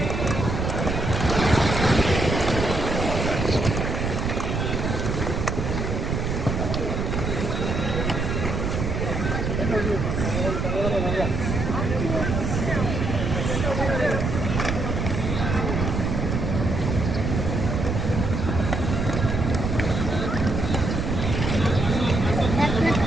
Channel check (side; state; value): right; noise; rumble, 1 dB below the sound